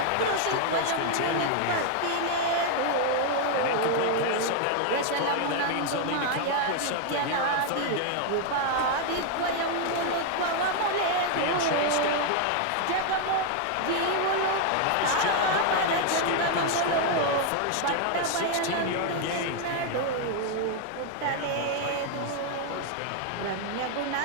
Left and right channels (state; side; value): different; both; correlation 0.00